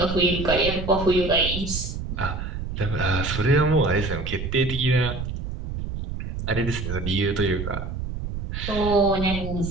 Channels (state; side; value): noise; right; rumble, 6 dB below the sound